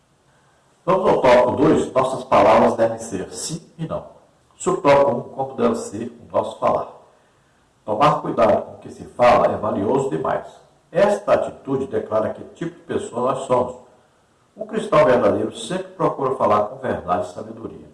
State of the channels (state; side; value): identical; both; correlation 1.00